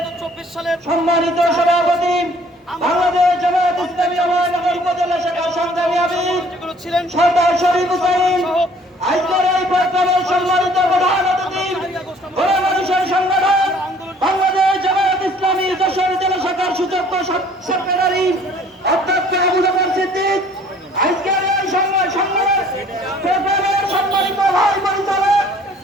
24 সালের সম্মানিত সভাপতি বাংলাদেশ জামাত ইসলামী অভয়নগর উপজেলা শাখার সংগ্রামী আমির যেগুলো ছিলেন সরদার শরীফ হুসাইন, আজকের এই প্রোগ্রামের সম্মানিত প্রধান অতিথি গণ মানুষের সংগঠন বাংলাদেশ জামাত ইসলামী যশোর জেলা শাখার সুযোগ্য সেক্রেটারি অধ্যক্ষ আবু বকর সিদ্দিক, আজকের এই প্রোগ্রামের সম্মানিত ভাই পরিচালক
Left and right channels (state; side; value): normal; both; correlation 0.56